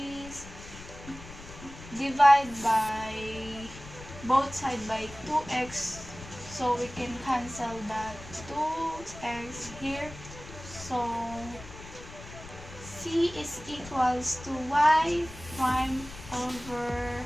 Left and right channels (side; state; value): left; noise; rumble, 15 dB below the sound